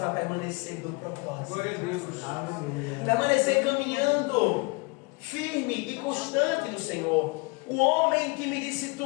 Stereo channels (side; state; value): right; quieter; 29.0 dB